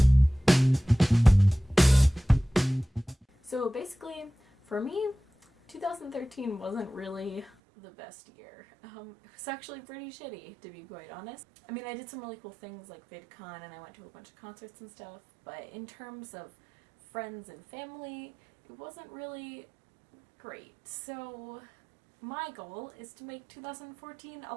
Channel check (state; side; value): drops out; left; at 7.5 s